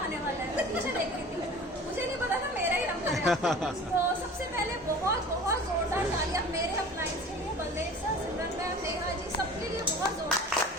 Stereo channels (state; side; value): normal; both; correlation 0.41